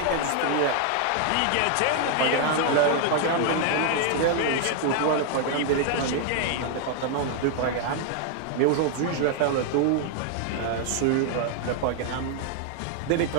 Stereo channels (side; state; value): both; different; correlation 0.00